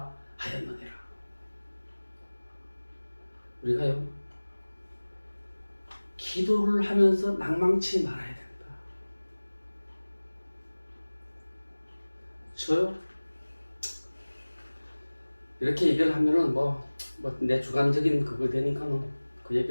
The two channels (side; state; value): both; inverted; correlation -1.00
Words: 하였느니라. 우리가요, 기도를 하면서 낭망치 말아야 된다. 저요, 이렇게 얘기를 하면은 내 주관적인 그거 되니까는 그